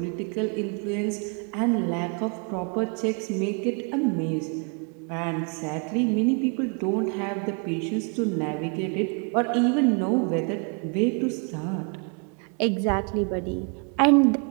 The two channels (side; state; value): left; quieter; 36.8 dB